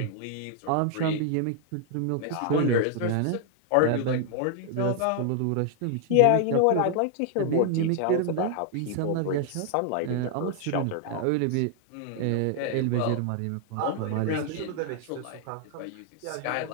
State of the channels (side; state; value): both; different; correlation 0.00